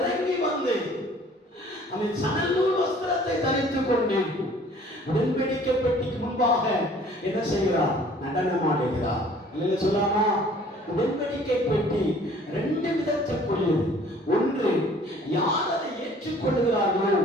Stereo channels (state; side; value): normal; both; correlation 0.53